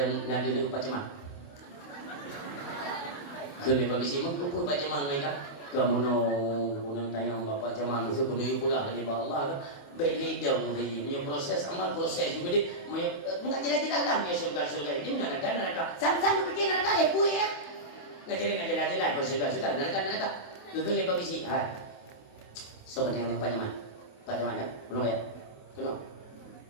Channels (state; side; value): late; right; 28 ms